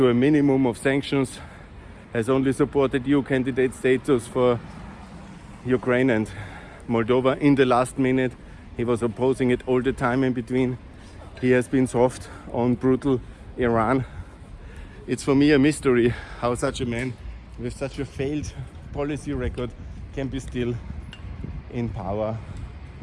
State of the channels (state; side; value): identical; both; correlation 1.00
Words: a minimum of sanctions, has only supported EU candidate status for Ukraine and Moldova in the last minute. He was opposing it all the time in between. He has been soft on brutal Iran. It's for me a mystery how such a man with such a failed policy record can be still in power